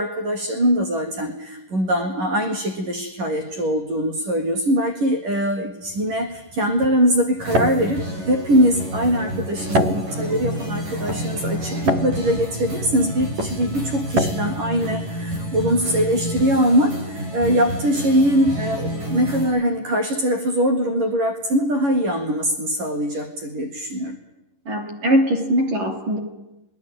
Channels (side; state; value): left; late; 11 ms